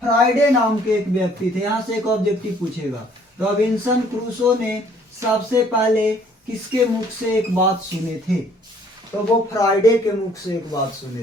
फ्राइडे नाम के एक व्यक्ति थे, यहाँ से एक ऑब्जेक्टिव पूछेगा, रॉबिन्सन क्रूसो ने सबसे पहले किसके मुख से एक बात सुने थे? तो वो फ्राइडे के मुख से एक बात सुने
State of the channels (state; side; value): normal; both; correlation 0.60